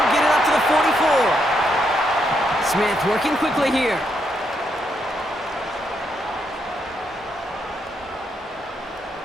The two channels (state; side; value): normal; both; correlation 0.78